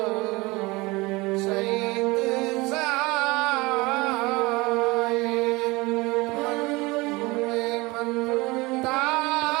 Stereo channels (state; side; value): quieter; left; 23.1 dB